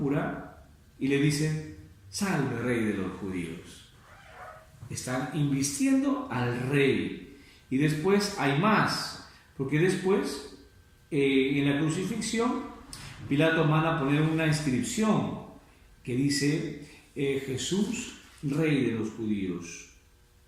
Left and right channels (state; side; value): identical; both; correlation 1.00